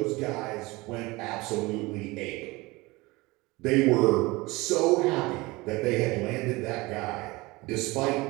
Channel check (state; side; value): quieter; left; 22.4 dB